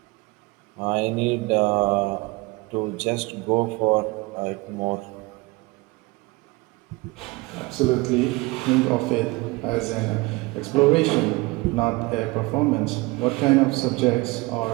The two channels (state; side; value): quieter; left; 23.7 dB